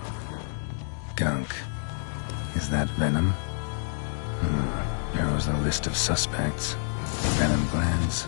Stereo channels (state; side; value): silent; right; digital silence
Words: Gunk. Is that venom? Narrows the list of suspects. Venom glands,